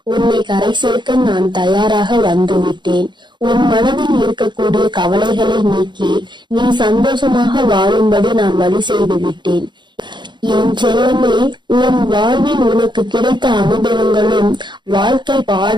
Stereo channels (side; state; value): left; late; 0.22 ms